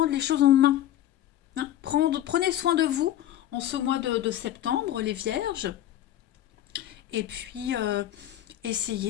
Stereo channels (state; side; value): quieter; right; 12.4 dB